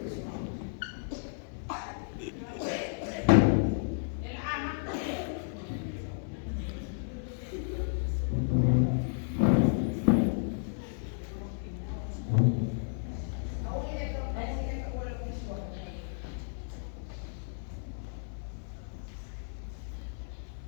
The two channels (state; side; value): silent; right; 56 dB below the other